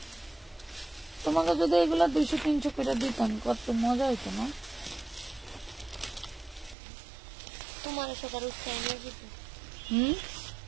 তোমাকে যদি এগুলা 200-300 করে দিতাম কত মজা হইতো না। তোমার সহকারে উস্তে নিয়ে যেত,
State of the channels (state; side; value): drops out; left; at 6.8 s